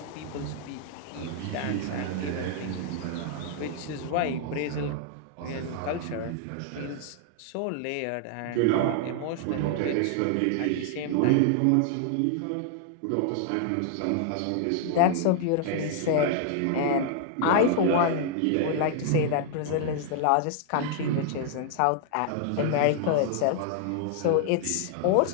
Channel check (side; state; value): both; different; correlation -0.01